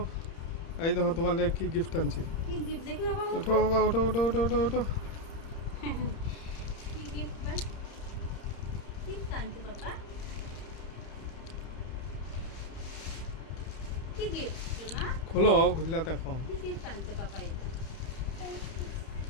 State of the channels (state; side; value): late; right; 30 ms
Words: এই দেখো তোমার লেগে কি গিফট আনছি। কি গিফট দেখি বাবা ওঠো মুখো। বাবা, ওঠো ওঠো ওঠো ওঠো ওঠো। কি গিফট বা কি আনছো বাবা? কি গিফট না? খোলো, খুললা দেখো। কি গিফট আনছো বাবা এটা?